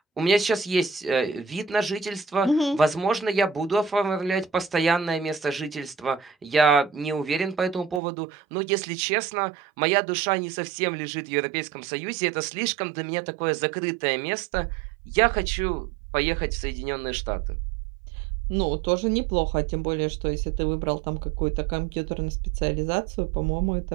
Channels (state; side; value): drops out; left; at 8.0 s